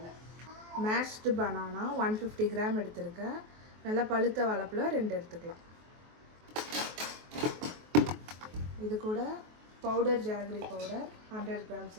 Mashed banana 150 gram எடுத்துருக்கேன். நல்ல பழுத்த வாழைப்பழம் 2 எடுத்துக்கலாம். இது கூட பவுடர் ஜாகரி பவுடர் 100 grams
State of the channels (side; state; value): left; late; 23 ms